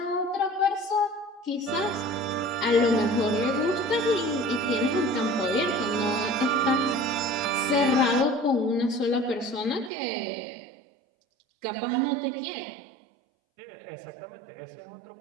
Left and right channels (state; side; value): drops out; left; at 9.9 s